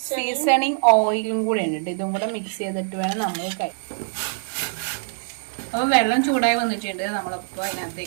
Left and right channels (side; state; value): left; silent; 63 dB below the other